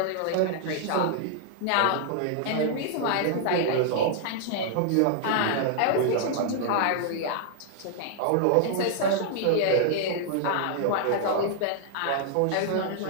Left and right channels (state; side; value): different; both; correlation -0.01